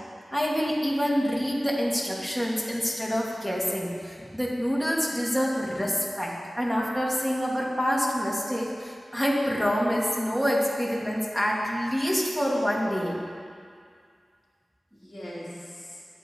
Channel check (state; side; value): normal; both; correlation 0.97